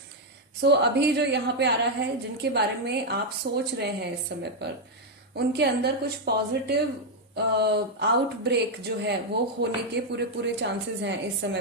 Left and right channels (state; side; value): normal; both; correlation 0.01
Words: सो अभी जो यहाँ पे आ रहा है, जिनके बारे में आप सोच रहे हैं इस समय पर, उनके अंदर कुछ पॉजिटिव आउटब्रेक जो है वो होने के पूरे पूरे चांसेस हैं इस समय